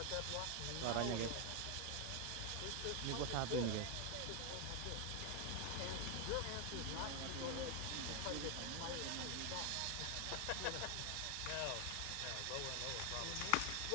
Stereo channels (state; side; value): different; both; correlation 0.01